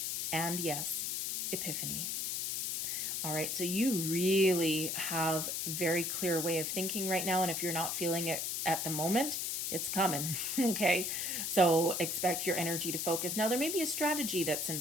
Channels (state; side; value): noise; left; hiss, 1 dB below the sound